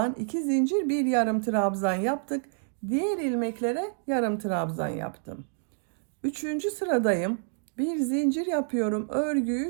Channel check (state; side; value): silent; left; digital silence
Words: 2 zincir, bir yarım trabzan yaptık. Diğer ilmeklere yarım trabzan yaptım. Üçüncü sıradayım. Bir zincir yapıyorum.